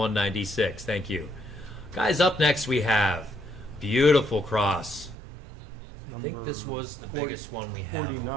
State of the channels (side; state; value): left; drops out; at 5.2 s